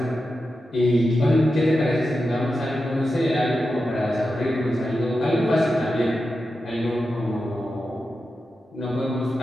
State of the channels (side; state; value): both; normal; correlation 0.90